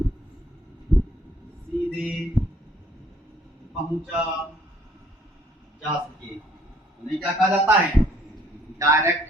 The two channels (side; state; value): both; normal; correlation 0.62